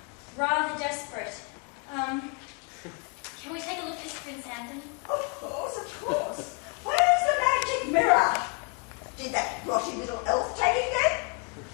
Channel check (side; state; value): right; quieter; 31.5 dB